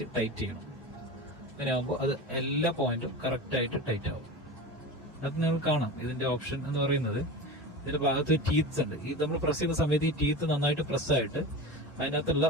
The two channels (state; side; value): normal; both; correlation 0.29